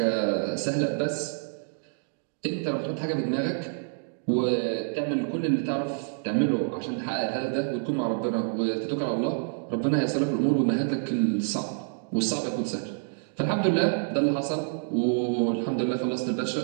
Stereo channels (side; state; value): left; silent; digital silence